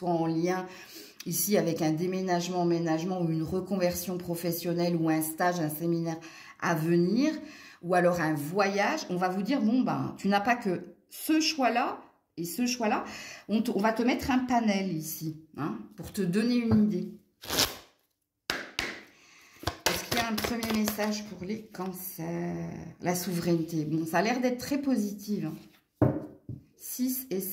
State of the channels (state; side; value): identical; both; correlation 1.00